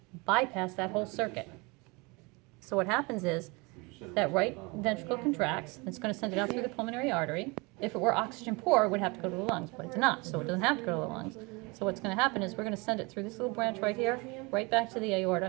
bypass that whole circuit. So what happens is that right ventricle contracts, and it's going to send it out through the pulmonary artery. If it were oxygen poor, it would have to go to the lungs, but it's not, so it doesn't have to go to the lungs. So what's going to happen is we're going to send it through this little branch right here, right back to the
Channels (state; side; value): quieter; left; 27.2 dB